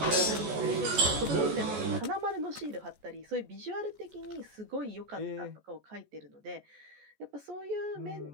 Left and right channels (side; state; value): left; late; 14 ms